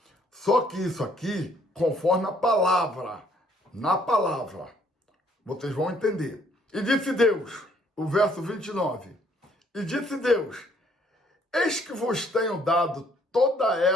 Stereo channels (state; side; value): normal; both; correlation 0.64